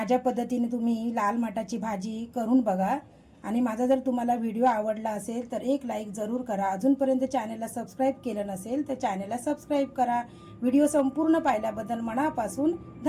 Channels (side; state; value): both; identical; correlation 1.00